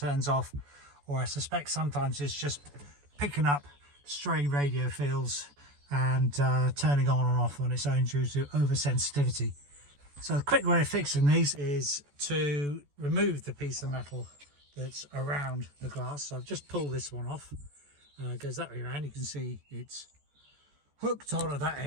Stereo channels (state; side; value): late; left; 14 ms